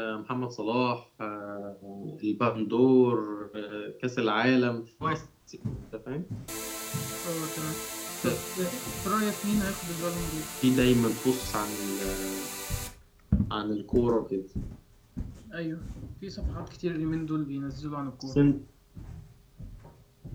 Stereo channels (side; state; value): both; identical; correlation 1.00